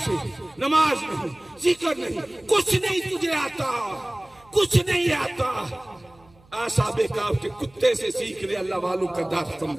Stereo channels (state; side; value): noise; right; hum, 29 dB below the sound